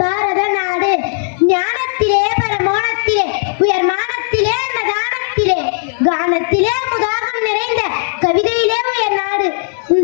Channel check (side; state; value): right; silent; 69 dB below the other